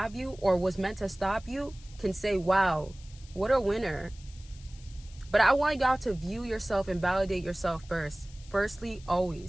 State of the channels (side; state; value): left; noise; hiss, 23 dB below the sound